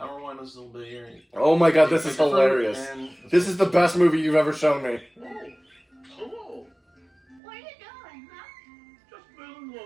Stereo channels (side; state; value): left; drops out; at 7.4 s